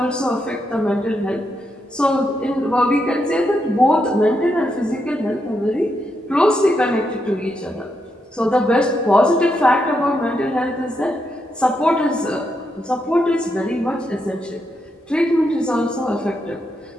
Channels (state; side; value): normal; both; correlation 0.82